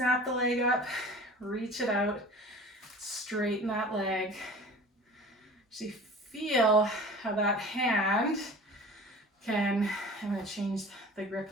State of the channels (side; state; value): both; normal; correlation 0.41